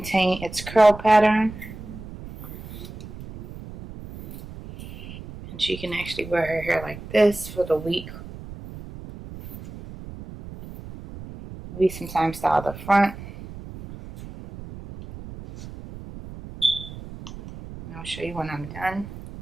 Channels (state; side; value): noise; right; rumble, 13 dB below the sound